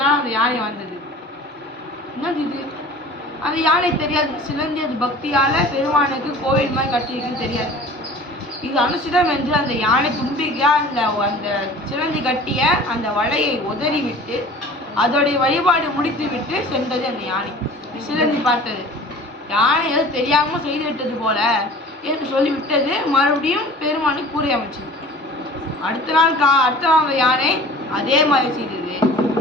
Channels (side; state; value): both; normal; correlation 0.43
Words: நாள் அந்த யானை வந்தது. என்னது இது? அந்த யானை தெரியாது. சிலந்தி அது பக்தியால பெருமானுக்கு கோவில் மாதிரி கட்டியிருக்குன்னு தெரியாது. இது அனுசிதம் என்று அந்த யானை தும்பிக்கையா அந்த சிலந்தி கட்டிய அந்த வலையை உதறி விட்டு அதோடைய வழிபாடு முடித்து விட்டு சென்றது அந்த யானை. சிலந்தி பார்த்தது, யானை ஏதோ தெரியாம செய்து விட்டது போல என்று சொல்லிவிட்டது. மறுபடியும் பெருமானுக்கு கூரை அமைச்சது. அடுத்த நாள் அந்த யானை அதே மாதிரி செய்தது.